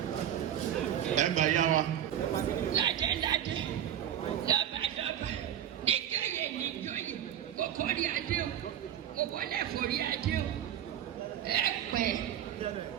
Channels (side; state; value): left; quieter; 10.4 dB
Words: Ẹgbẹ́ yá wa. Ládé lọ́ba nígbàyè níjọ́yè kókó rí adé o kókó lẹ́fọ̀ rí adé o ẹ pẹ́